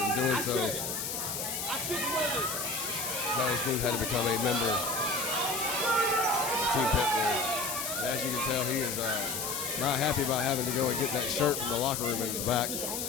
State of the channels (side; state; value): left; noise; hiss, 3 dB below the sound